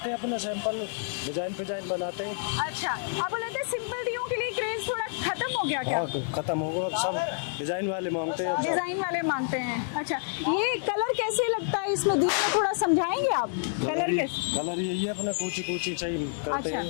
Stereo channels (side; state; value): right; silent; digital silence